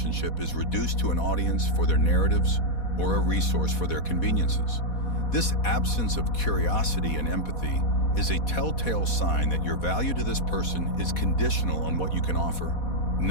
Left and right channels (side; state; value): right; late; 4.1 ms